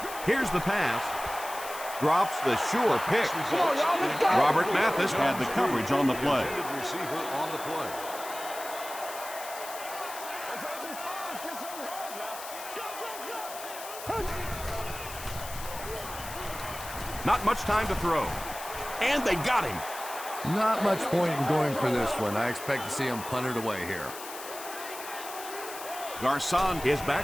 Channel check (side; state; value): left; noise; hiss, 12 dB below the sound